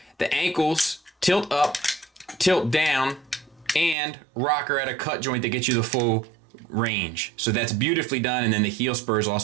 The ankles tilt up, tilt down, and rocker at a cut joint that gets you the full range. So that's beautifully done. And then the heel spurs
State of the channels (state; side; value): drops out; left; at 4.0 s